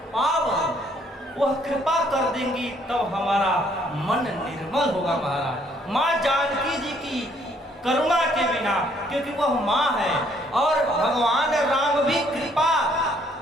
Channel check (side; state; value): both; normal; correlation 0.65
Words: पावन। वह कृपा कर देंगी तब हमारा मन निर्मल होगा महाराज। माँ जानकी जी की करुणा के बिना, क्योंकि वह माँ है और भगवान राम भी कृपा